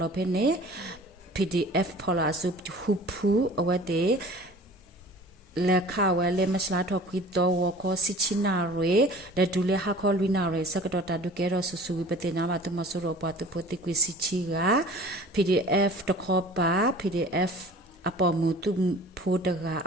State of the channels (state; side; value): normal; both; correlation 0.44